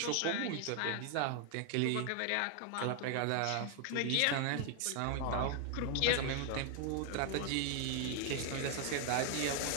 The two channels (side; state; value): both; different; correlation 0.00